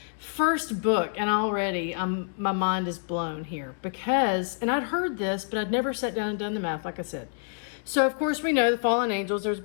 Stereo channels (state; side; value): silent; right; digital silence